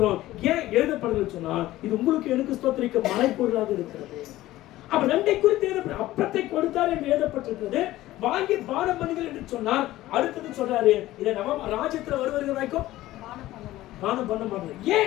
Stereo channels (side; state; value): right; quieter; 16.0 dB